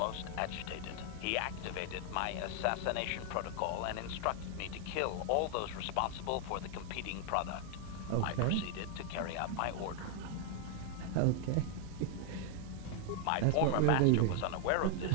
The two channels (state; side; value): different; both; correlation 0.00